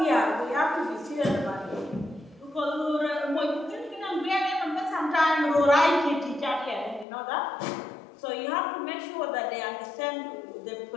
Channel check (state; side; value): drops out; right; at 7.1 s